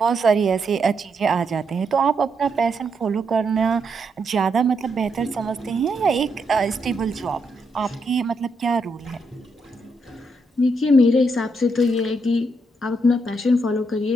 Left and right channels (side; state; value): both; normal; correlation 0.79